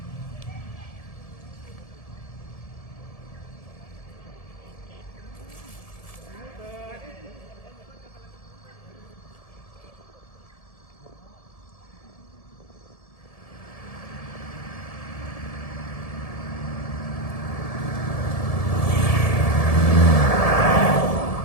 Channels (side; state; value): right; late; 1.7 ms